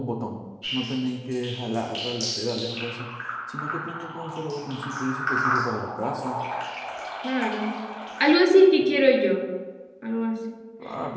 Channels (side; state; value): both; identical; correlation 1.00